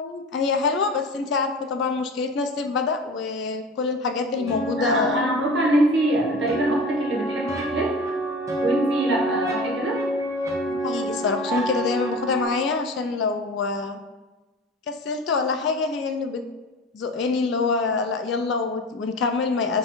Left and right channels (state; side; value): normal; both; correlation 0.35